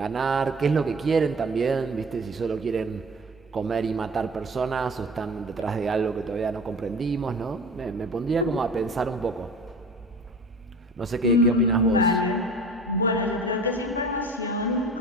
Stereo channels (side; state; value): both; normal; correlation 0.40